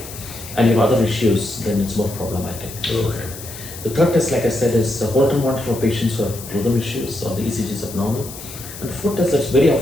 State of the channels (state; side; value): noise; left; hiss, 13 dB below the sound